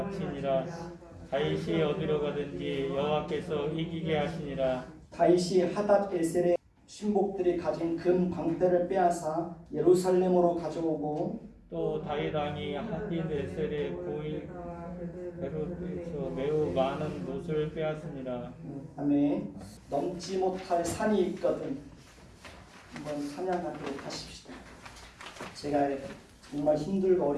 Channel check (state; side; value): identical; both; correlation 1.00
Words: 다윗이 어디로 가든지 여호와께서 이기게 하시니라. 다윗이 하닷에셀의 신복들이 가진 금 방패를 빼앗아 예루살렘으로 가져오고 또 다윗 왕이 하닷에셀의 고인 베롯에서 매우 많은 못을 빼앗습니다. 다음에 넘지 못할 산이 있거든 한번 찬양하도록 하십시다. 제가 정말 힘들고